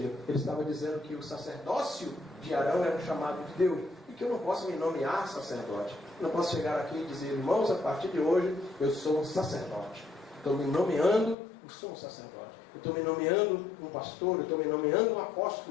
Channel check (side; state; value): right; drops out; at 11.4 s